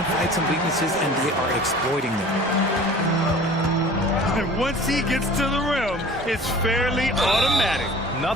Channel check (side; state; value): both; normal; correlation 0.44